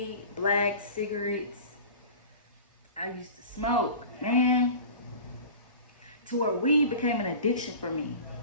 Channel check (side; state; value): both; inverted; correlation -0.38